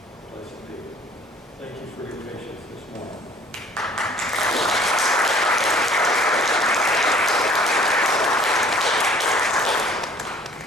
Blessed be. Thank you for your patience.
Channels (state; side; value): normal; both; correlation 0.53